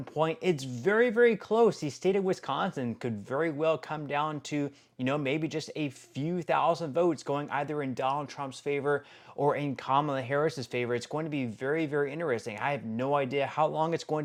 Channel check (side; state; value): both; identical; correlation 1.00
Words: point. It's very, very close. The state of Wisconsin could very well come down to, maybe just a few thousand votes going either in Donald Trump's favor or in Kamala Harris's favor. It's going to be very, very interesting. I have no idea how long it's going